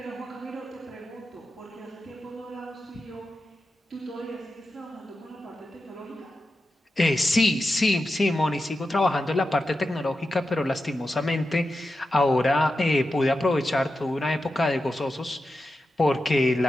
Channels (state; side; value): normal; both; correlation 0.90